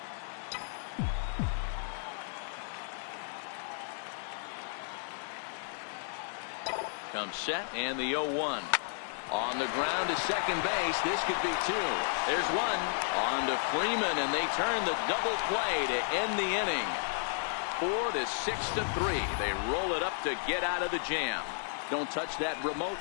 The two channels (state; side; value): silent; right; digital silence